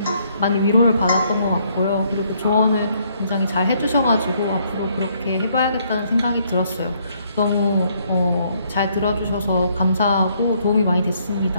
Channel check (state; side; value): inverted; both; correlation -0.69